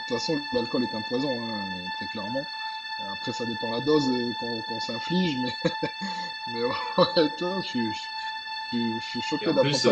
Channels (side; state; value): both; identical; correlation 1.00